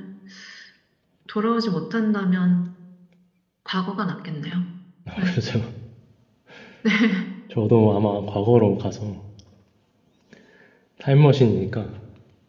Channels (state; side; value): identical; both; correlation 1.00